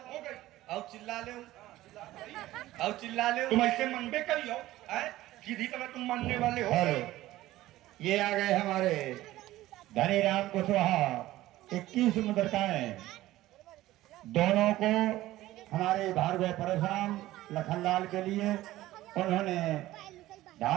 हो गई। अब चिल्ला ले, अब चिल्ला ले। तुम ऐसे मनबे करियो, सीधी तरह तुम मानने वाले हो। हेलो, ये आ गए हमारे धनी राम कुशवाहा। 21 मुद्रिकाएं दोनों को हमारे भार्गव परशुराम लखनलाल के लिए उन्होंने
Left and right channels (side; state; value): left; quieter; 15.9 dB